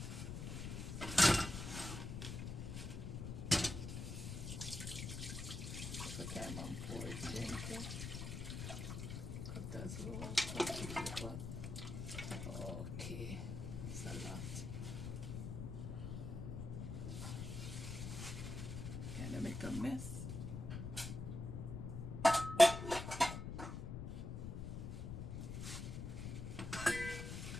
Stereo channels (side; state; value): left; noise; rumble, 5 dB below the sound